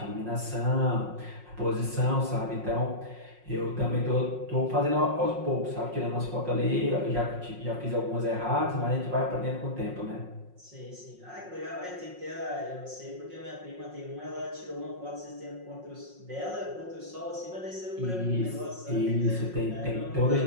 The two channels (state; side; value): late; left; 5.5 ms